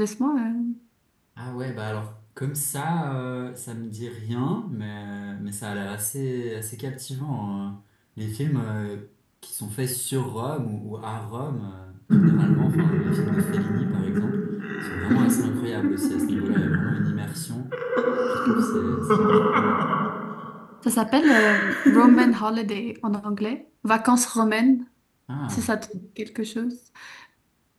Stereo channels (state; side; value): identical; both; correlation 1.00